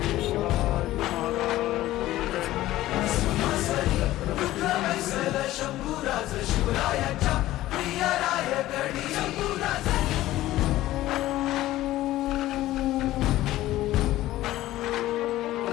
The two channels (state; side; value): quieter; right; 15.5 dB